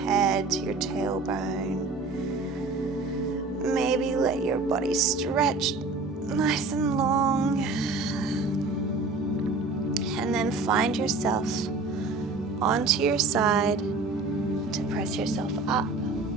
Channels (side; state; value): left; quieter; 3.6 dB